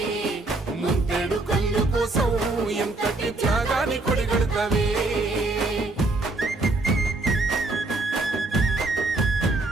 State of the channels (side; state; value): left; quieter; 3.1 dB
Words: ముంతేడు కళ్ళు కోసం ఎంతటి త్యాగాన్ని కొడిగడతావే